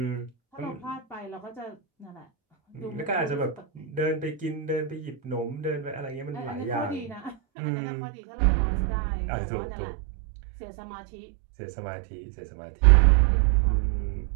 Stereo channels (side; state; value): left; drops out; at 7.4 s